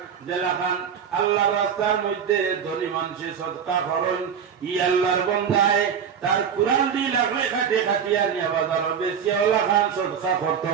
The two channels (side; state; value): left; quieter; 7.5 dB